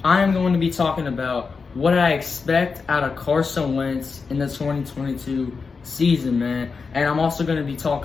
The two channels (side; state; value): right; quieter; 4.9 dB